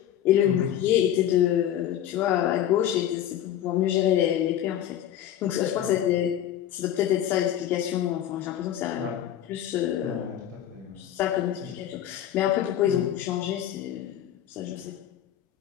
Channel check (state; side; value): quieter; right; 11.1 dB